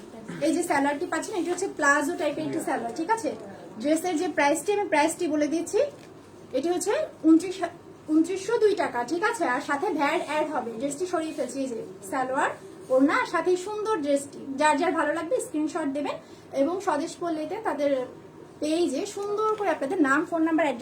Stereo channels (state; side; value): identical; both; correlation 1.00